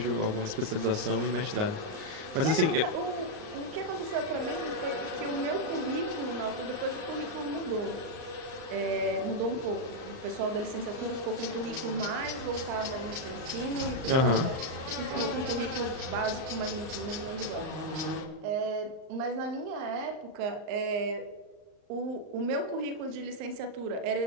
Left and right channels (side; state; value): left; late; 38 ms